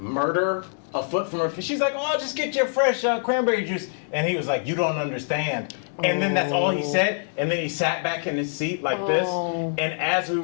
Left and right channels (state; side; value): silent; right; digital silence